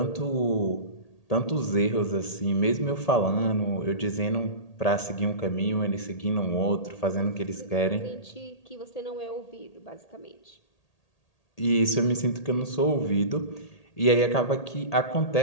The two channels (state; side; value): late; right; 1.8 ms